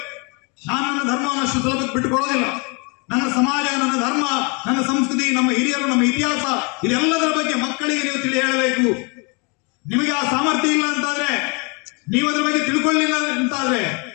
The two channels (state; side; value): quieter; right; 32.4 dB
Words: ನಾನು ನನ್ನ ಧರ್ಮವನ್ನು ಅಷ್ಟು ಸುಲಭಕ್ಕೆ ಬಿಟ್ಟುಕೊಳ್ಳೋದಿಲ್ಲ. ನನ್ನ ಸಮಾಜ, ನನ್ನ ಧರ್ಮ, ನನ್ನ ಸಂಸ್ಕೃತಿ, ನಮ್ಮ ಹಿರಿಯರು, ನಮ್ಮ ಇತಿಹಾಸ, ಇದೆಲ್ಲದರ ಬಗ್ಗೆ ಮಕ್ಕಳಿಗೆ ನೀವು ತಿಳಿ ಹೇಳಬೇಕು. ನಿಮಗೆ ಆ ಸಾಮರ್ಥ್ಯ ಇಲ್ಲ ಅಂತಾದ್ರೆ, ನೀವು ಅದ್ರ ಬಗ್ಗೆ ತಿಳ್ಕೊಳ್ಳಿಲ್ಲ ಅಂತಾದ್ರೆ,